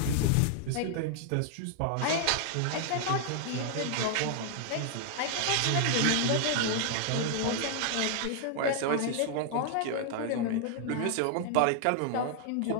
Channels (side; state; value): both; different; correlation 0.00